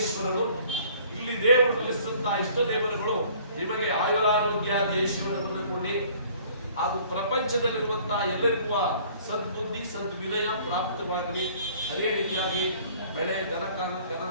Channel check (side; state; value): both; inverted; correlation -0.54